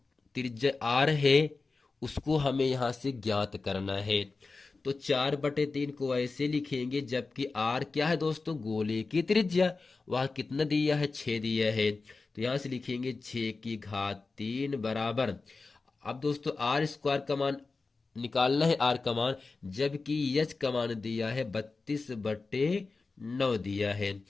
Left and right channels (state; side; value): quieter; right; 4.0 dB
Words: त्रिज्या आर है उसको हमें यहां से ज्ञात करना है। तो 4/3 को ऐसे लिखेंगे, जबकि आर क्या है दोस्तों, गोले की त्रिज्या, वह कितना दिया है 6 दिया है, तो यहां से लिखेंगे 6⁻³ बराबर। अब दोस्तों आर स्क्वायर का मान निकालना है, आर का मान, जबकि एच का मान दिया है 32/9 दिया है।